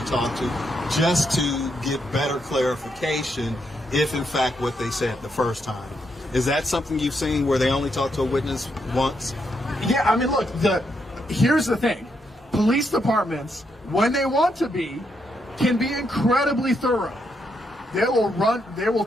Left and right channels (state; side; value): normal; both; correlation 0.79